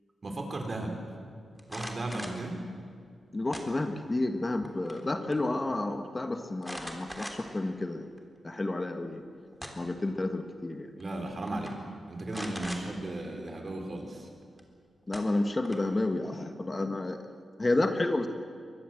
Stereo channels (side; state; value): both; normal; correlation 0.96